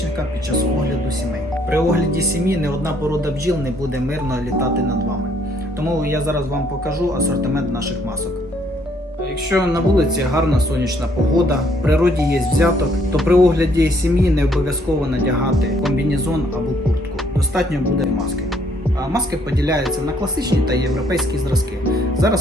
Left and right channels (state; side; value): normal; both; correlation 0.66